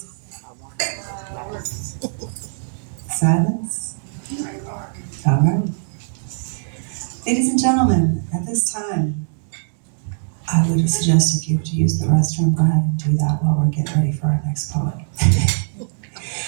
Silence? All right. Ladies and gentlemen, at this time, I would suggest if you have to use the restroom, go ahead and do that while we're getting ready for our next poet.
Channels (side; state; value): left; silent; digital silence